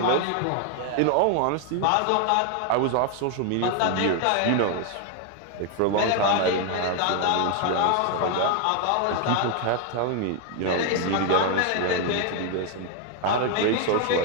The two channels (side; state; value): both; different; correlation 0.01